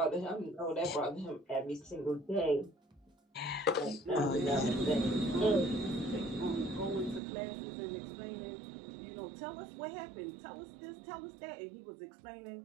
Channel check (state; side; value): drops out; left; at 7.2 s